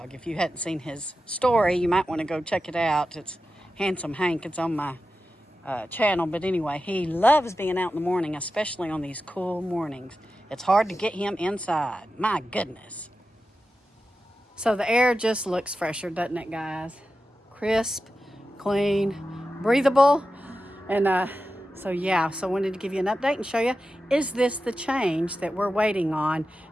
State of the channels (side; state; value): both; normal; correlation 0.92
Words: If you hadn't seen his story, you might want to go check it out. It's Handsome Hank. It's on my channel. But anyway, he loves being out in the morning, especially on these cool mornings. It's hard to get him inside. My goodness. So the air just looks fresher, doesn't it, guys? Crisp, clean, breathable. And so I wanted to give you an update and show you, is this the change that we're waiting on